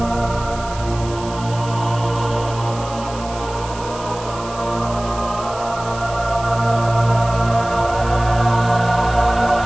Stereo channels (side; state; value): right; noise; hiss, 16 dB below the sound